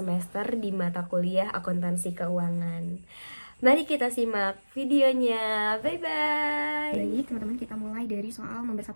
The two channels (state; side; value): inverted; both; correlation -1.00